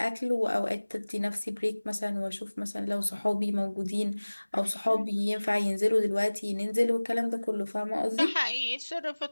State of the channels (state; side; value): inverted; both; correlation -1.00